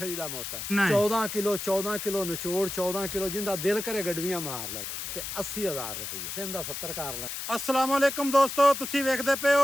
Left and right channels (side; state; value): left; noise; hiss, 6 dB below the sound